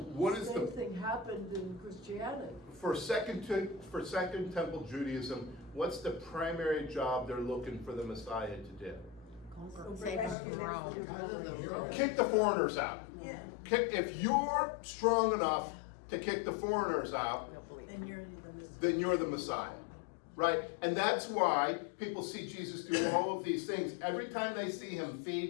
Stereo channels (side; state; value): right; drops out; at 10.4 s